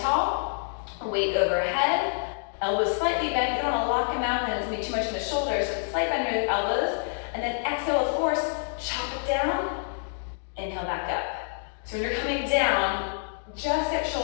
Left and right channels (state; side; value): silent; right; digital silence